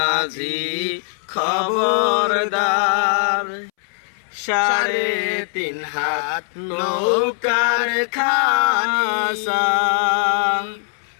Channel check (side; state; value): right; silent; 66 dB below the other